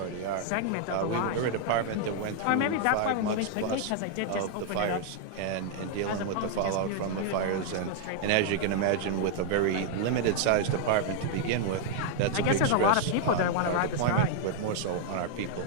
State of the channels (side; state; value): both; different; correlation 0.00